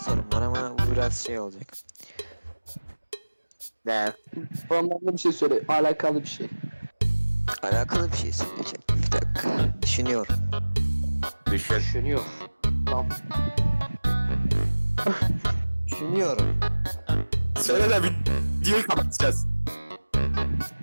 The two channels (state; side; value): inverted; both; correlation -1.00